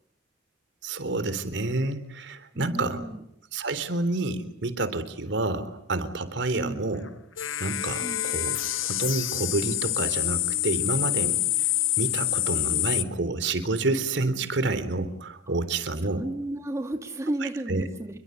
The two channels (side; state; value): both; normal; correlation 0.23